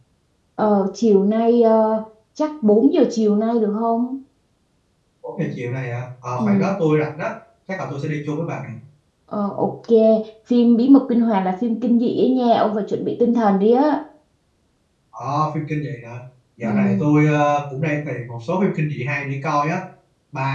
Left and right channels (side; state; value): both; identical; correlation 1.00